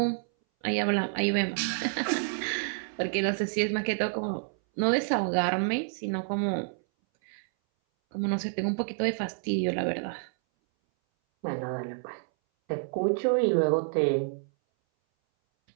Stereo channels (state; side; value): silent; left; 59 dB below the other